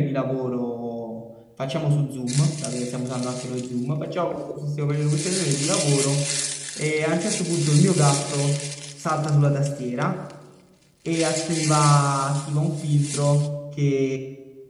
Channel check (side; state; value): both; identical; correlation 1.00